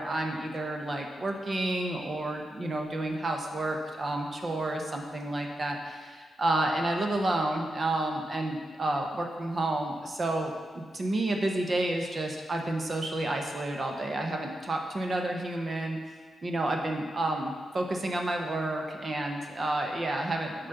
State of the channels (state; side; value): normal; both; correlation 0.88